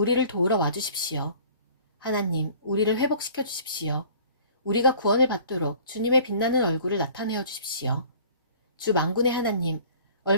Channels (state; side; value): inverted; both; correlation -0.49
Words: 도우러 와주십시오. 하나님, 우리를 회복시켜 주십시오. 우리가 구원을 받도록 주님의 빛나는 얼굴을 나타내어 주십시오. 주 만군의 하나님,